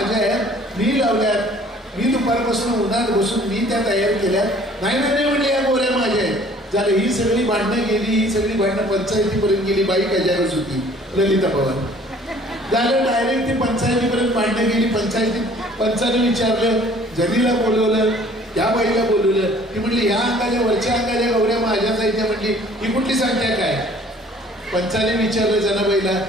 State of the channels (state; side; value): normal; both; correlation 0.54